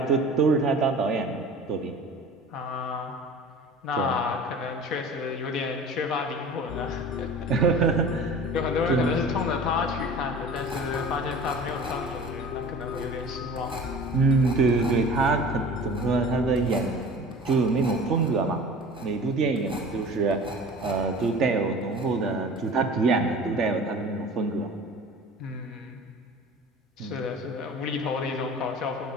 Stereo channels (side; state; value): both; normal; correlation 0.41